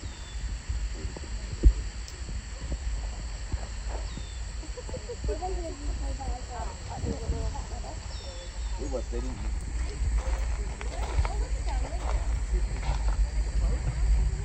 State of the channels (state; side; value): identical; both; correlation 1.00